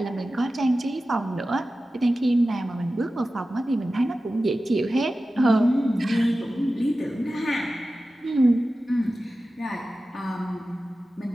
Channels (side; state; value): both; normal; correlation 0.95